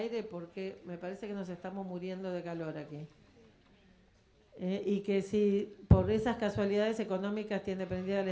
porque me parece que nos estamos muriendo de calor aquí. Y que si por esas casualidades económicas tiene prendida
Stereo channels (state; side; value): identical; both; correlation 1.00